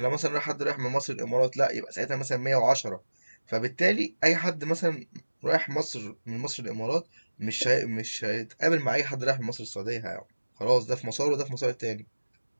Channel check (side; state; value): both; inverted; correlation -1.00